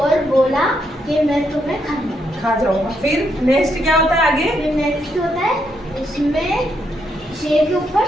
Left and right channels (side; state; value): both; normal; correlation 0.77